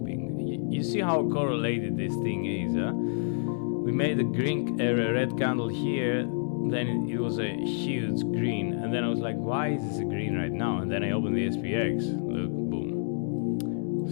You see how correlated this thing is, huh? We made a red candle here. then it was a huge green, and then I was like, why is this a green right now? And then I opened the SPX. Look, boom.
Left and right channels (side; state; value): right; silent; 59 dB below the other